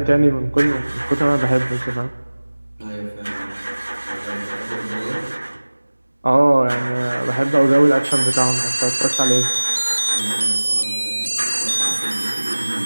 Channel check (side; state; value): both; inverted; correlation -1.00